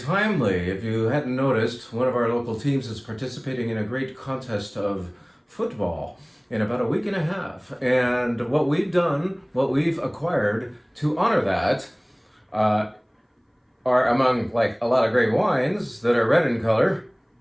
If you hadn't noticed, one of our local teams is participating in a great contest of football in about a week and a half. And what we've done, what we've acquired to honor that, are among like a lot of great wines that are red in color,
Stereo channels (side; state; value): both; identical; correlation 1.00